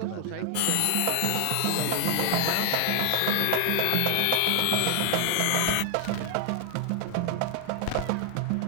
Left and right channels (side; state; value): both; different; correlation 0.00